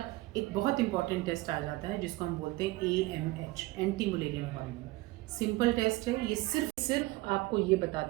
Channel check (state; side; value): quieter; left; 20.2 dB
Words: एक बहुत इंपॉर्टेंट टेस्ट आ जाता है जिसको हम बोलते हैं AMH, anti Mullerian hormone. Simple test है, ये सिर्फ आपको ये